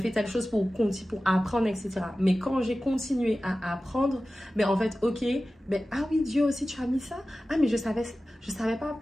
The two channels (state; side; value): normal; both; correlation 0.95